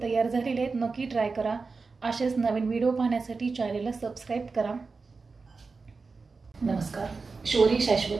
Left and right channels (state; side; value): quieter; left; 4.3 dB